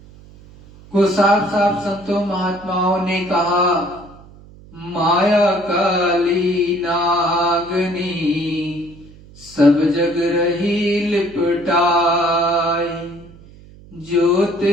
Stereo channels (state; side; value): noise; right; hum, 22 dB below the sound